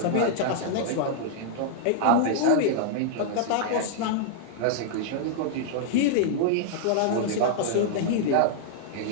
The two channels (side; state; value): both; different; correlation -0.01